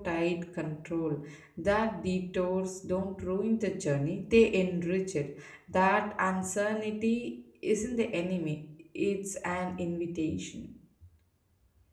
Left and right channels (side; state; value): both; identical; correlation 1.00